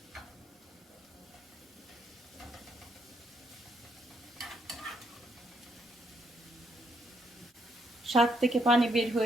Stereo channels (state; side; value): normal; both; correlation 0.74